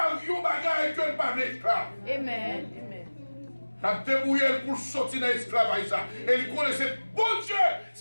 il bagaille que pas d'esclave. Amen. Il a débrouillé pour sortir de l'esclavage. Et il connaissait bon Dieu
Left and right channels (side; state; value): both; inverted; correlation -1.00